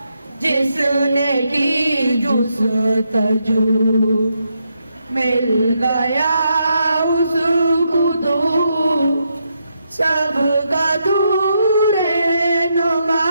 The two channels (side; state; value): both; inverted; correlation -0.80